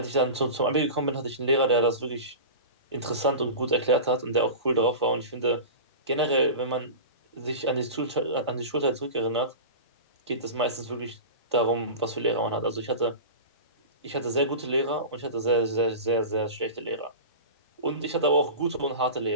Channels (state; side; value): inverted; both; correlation -0.30